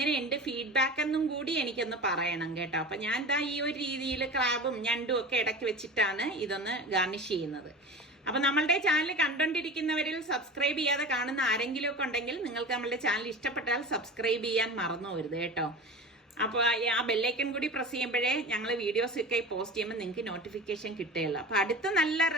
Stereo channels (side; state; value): both; normal; correlation 0.32